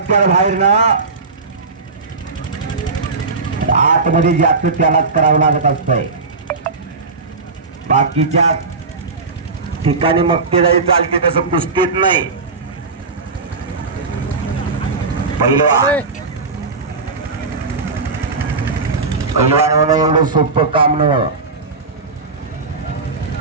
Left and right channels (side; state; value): left; quieter; 4.2 dB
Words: बाहेर ना, आतमध्ये ज्याचं त्यालाच करावं लागत असतंय. बाकीच्या ठिकाणी मग ते जाई चालते, तसं कुस्तीत नाही. चले पैलवान होणं एवढं सोपं काम नव्हतं.